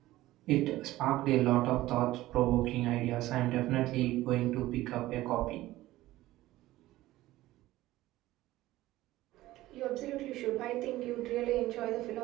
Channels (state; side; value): quieter; left; 16.5 dB